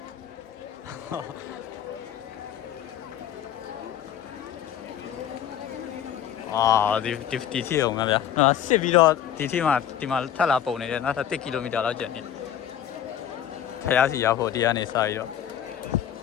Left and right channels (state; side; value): quieter; right; 10.0 dB